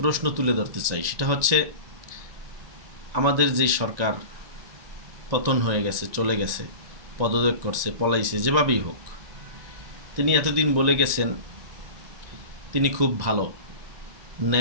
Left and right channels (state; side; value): late; left; 1.9 ms